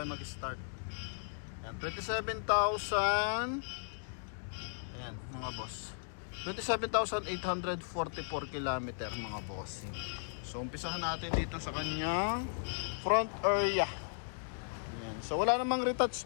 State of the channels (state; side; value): silent; right; digital silence